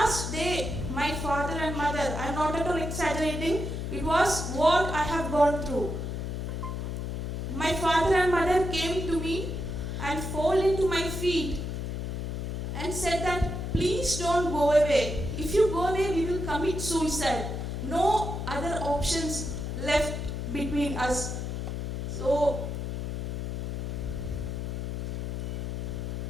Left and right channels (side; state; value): left; noise; hum, 3 dB below the sound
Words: day, my father and mother, I'm not at all exaggerating, it was what I have gone through. My father and mother came to me and fall into my feet and said that please don't go away. If you go away, we will commit suicide. No other options left between us. So